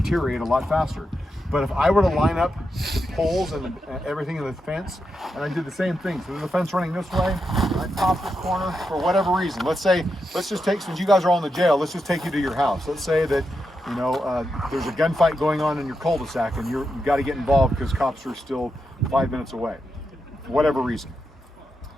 deteriorate a lot faster. But if I were to line up the poles and everything in the fence, and I did the same thing, so there's a fence running this way, I pop this corner for whatever reason. Let's just take, since you guys are all in the jail, let's just take you to your house. Let's say that, there's a gunfight going on in your cul-de-sac and you've got to get involved because cops are still 5 minutes away, for whatever reason.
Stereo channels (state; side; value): normal; both; correlation 0.86